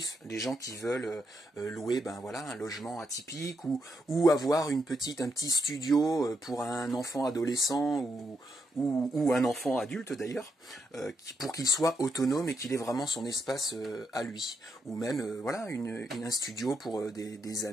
les gens qui veulent louer voilà, un logement atypique, ou avoir un petit studio pour un enfant adolescent, ou un enfant adulte d'ailleurs, pour qu'il soit autonome et qu'il ait vraiment son espace à lui. Ou même voilà, un studio pour des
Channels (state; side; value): normal; both; correlation 0.81